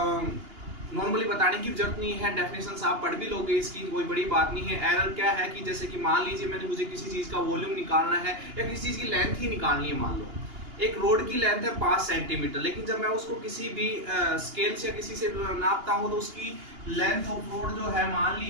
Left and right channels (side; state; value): left; late; 2.8 ms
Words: नॉर्मली बताने की जरूरत नहीं है। डेफिनेशन आप पढ़ भी लोगे, इसकी कोई बड़ी बात नहीं है। एरर क्या है कि जैसे कि मान लीजिए मुझे किसी चीज़ का वॉल्यूम निकालना है या किसी चीज़ की लेंथ ही निकालनी है। मान लो एक रोड की लेंथ है 5 सेंटीमीटर, लेकिन जब मैं उसको किसी भी स्केल से या किसी से नापता हूँ तो उसकी लेंथ ऑफ रोड जो है मान